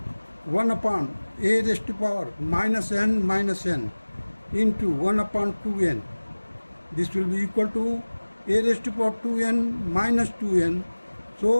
1 upon a raised to power minus n into 1 upon 2n. This will be equal to a raised to power 2n minus 2n.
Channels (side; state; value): both; inverted; correlation -1.00